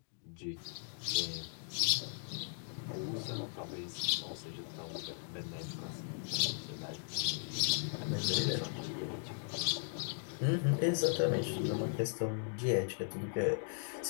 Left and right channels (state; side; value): silent; right; digital silence